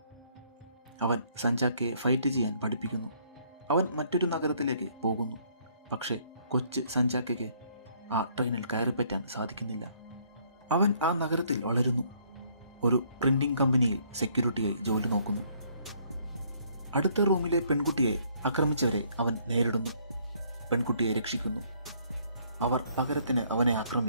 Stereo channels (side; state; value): both; inverted; correlation -0.65